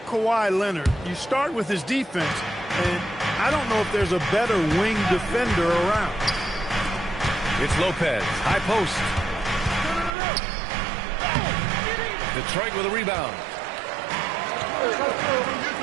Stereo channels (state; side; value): drops out; left; at 10.1 s